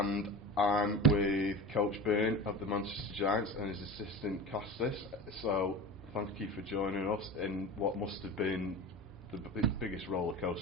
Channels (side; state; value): both; normal; correlation 0.31